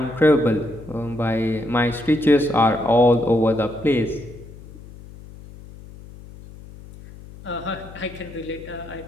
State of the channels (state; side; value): noise; left; hum, 18 dB below the sound